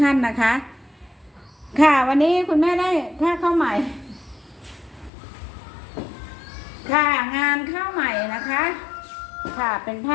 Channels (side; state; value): right; drops out; at 5.1 s